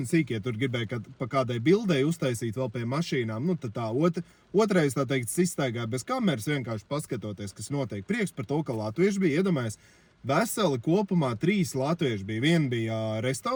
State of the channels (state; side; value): identical; both; correlation 1.00